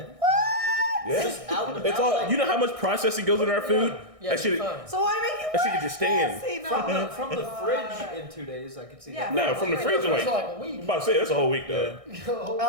Yeah. Just out and It's about, all. like- You know how much processing goes into our food? Yeah, That shit. fine. So why make it That shit could just stay in. nasty? From the fridge in 2 days, I could see Yeah. that. No, from the fridge, I'm It's like, like a week. I'm about to say that's a whole week though.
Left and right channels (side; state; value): left; late; 1.6 ms